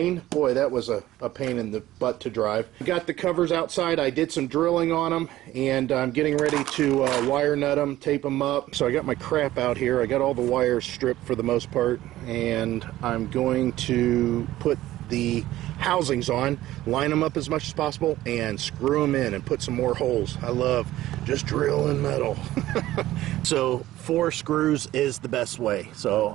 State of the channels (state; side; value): quieter; left; 15.2 dB